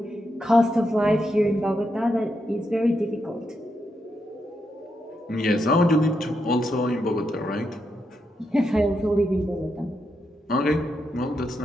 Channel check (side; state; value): both; normal; correlation 0.83